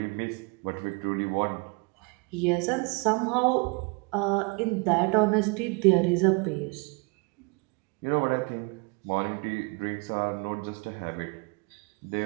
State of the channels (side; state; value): left; quieter; 30.4 dB